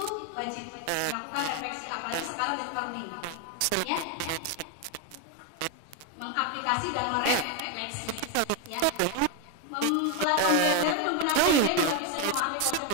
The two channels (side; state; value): both; different; correlation 0.02